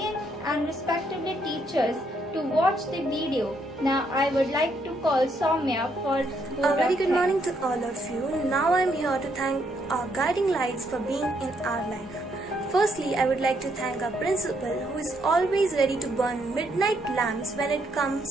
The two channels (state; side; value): normal; both; correlation 0.74